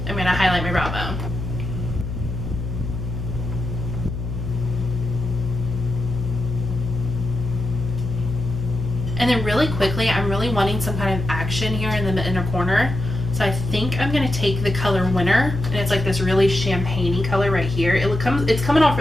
I'm going to highlight my brow bone. And then really quickly, I'm really wanting some kind of action here in the inner corner. So I think I'm going to take the color Winter, and it's like this really champagne-y color right here. It's coming off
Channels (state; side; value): noise; left; hum, 5 dB below the sound